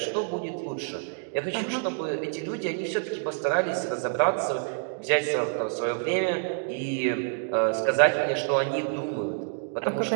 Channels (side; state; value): left; silent; digital silence